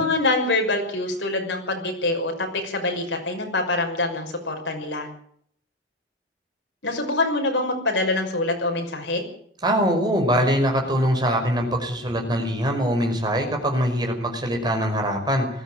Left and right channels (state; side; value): normal; both; correlation 0.25